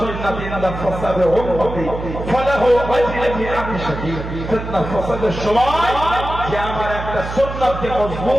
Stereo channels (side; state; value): right; noise; hum, 8 dB below the sound